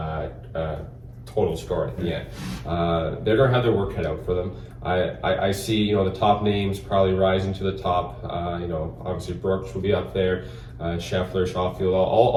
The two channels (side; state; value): both; identical; correlation 1.00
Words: total score at the end. They're going to have their work cut out for them. I see, the top names probably rising to the top. Obviously Brooks will be up there, Scheffler, Schofield,